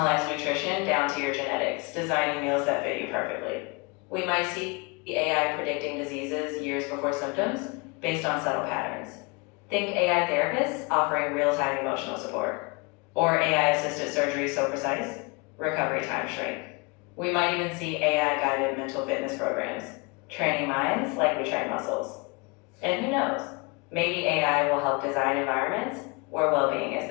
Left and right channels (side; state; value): right; quieter; 28.9 dB